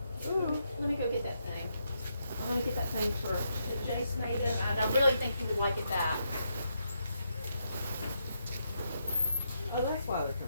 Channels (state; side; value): inverted; both; correlation -0.80